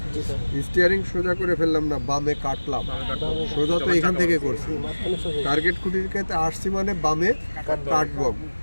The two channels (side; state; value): both; inverted; correlation -1.00